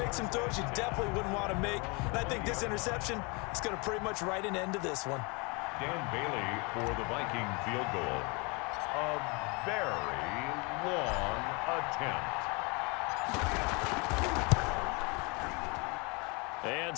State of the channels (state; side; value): quieter; right; 29.8 dB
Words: some throws you definitely wouldn't want to make. And I think this interception is going to pretty much write an end to this one. Dan Bailey for the Viking field goal. A very long attempt. And